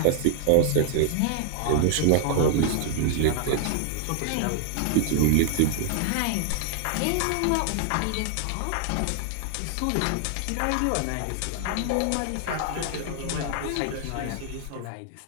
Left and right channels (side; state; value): both; different; correlation 0.00